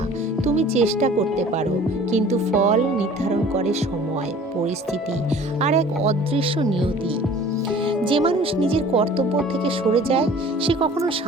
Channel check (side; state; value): both; normal; correlation 0.48